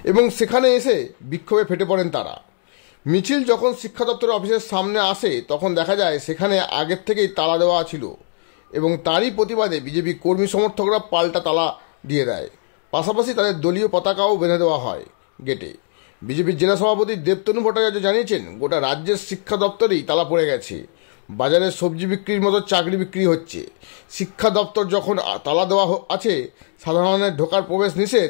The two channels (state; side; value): silent; right; digital silence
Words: এবং সেখানে এসে বিক্ষোভে ফেটে পড়েন তারা। মিছিল যখন শিক্ষা দপ্তরের অফিসের সামনে আসে তখন দেখা যায় সেখানে আগের থেকেই তালা দেওয়া ছিল এবং তারই প্রতিবাদে বিজেপি কর্মী সমর্থকরা পাল্টা তালা দিয়ে দেয়। পাশাপাশি তাদের দলীয় পতাকাও বেঁধে দেওয়া হয় গেটে। বিজেপির জেলা সভাপতি দেবতনু ভট্টাচার্য জানিয়েছেন, গোটা রাজ্যের শিক্ষা দপ্তরেই তালা পড়ে গেছে। বাজারে সবজি বিক্রির মতো চাকরি বিক্রি হচ্ছে। শিক্ষা দপ্তর যখন তালা দেওয়া আছে, সাধারণের ঢোকার প্রবেশ